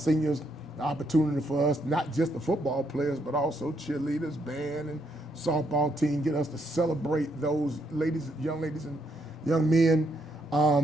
The opportunity for us, not just the football players, but also cheerleaders, band, and softball team, get us to celebrate those young ladies and young men.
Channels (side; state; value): both; normal; correlation 0.75